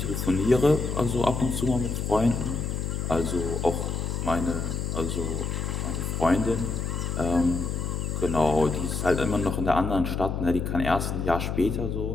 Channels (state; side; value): noise; left; hum, 2 dB below the sound